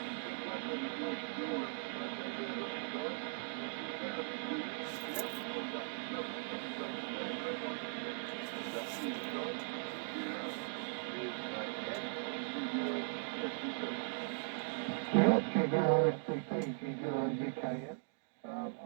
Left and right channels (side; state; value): left; silent; digital silence